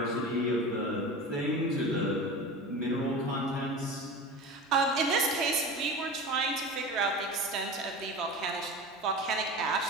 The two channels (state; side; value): normal; both; correlation 0.31